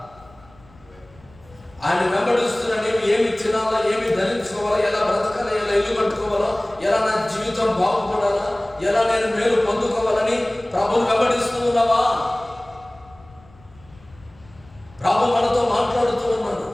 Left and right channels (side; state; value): left; noise; rumble, 26 dB below the sound